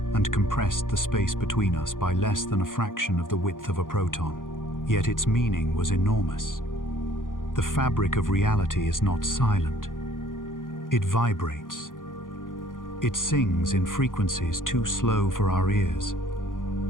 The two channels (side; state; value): right; late; 0.89 ms